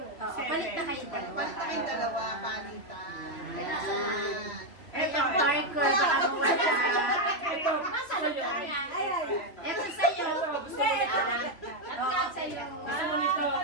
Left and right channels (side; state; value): right; late; 2.8 ms